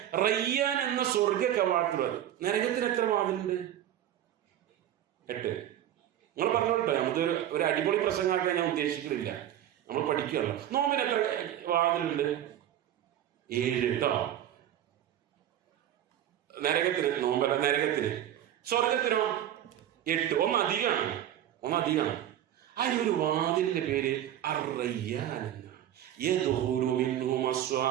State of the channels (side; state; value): left; quieter; 11.5 dB